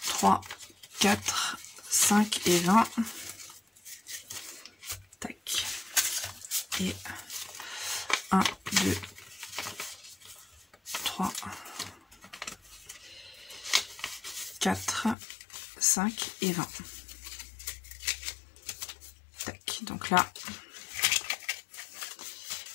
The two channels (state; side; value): drops out; right; at 15.2 s